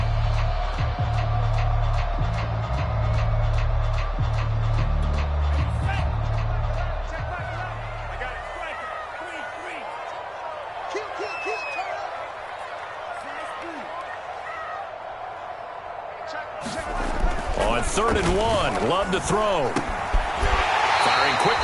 On 3rd and 1, Love to throw. Firing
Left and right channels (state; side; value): identical; both; correlation 1.00